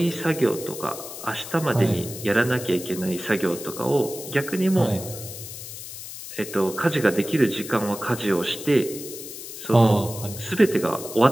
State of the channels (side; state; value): left; noise; hiss, 11 dB below the sound